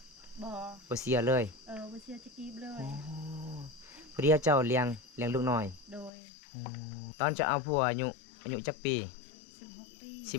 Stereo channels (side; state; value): right; drops out; at 6.1 s